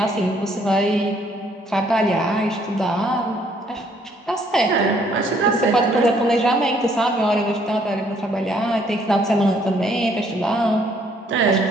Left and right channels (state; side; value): normal; both; correlation 0.65